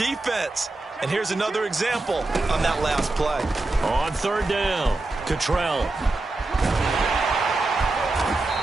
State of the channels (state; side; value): quieter; left; 3.1 dB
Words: And here's another example on that last play. On 3rd down, Cottrell.